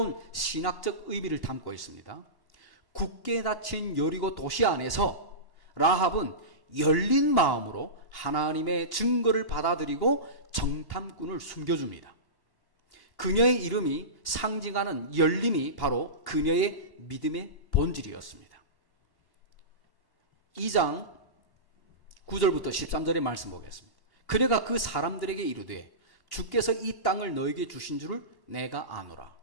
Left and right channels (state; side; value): late; left; 1.1 ms